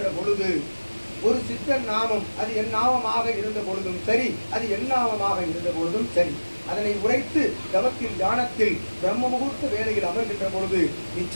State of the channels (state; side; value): inverted; both; correlation -1.00